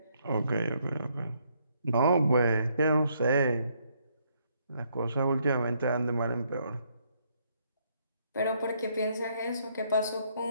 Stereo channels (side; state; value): both; inverted; correlation -0.72